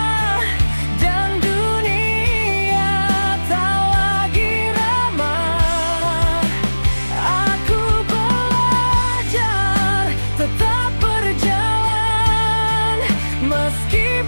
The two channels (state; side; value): inverted; both; correlation -1.00